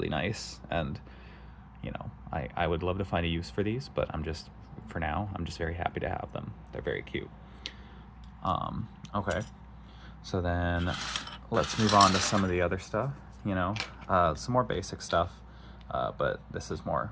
nice, and I would love to find a use for these, but for now I'm just very happy to have them. They're very cute. Okay, so then let's move on to some of the other stuff. Some more basic stuff, but this is more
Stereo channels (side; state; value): both; identical; correlation 1.00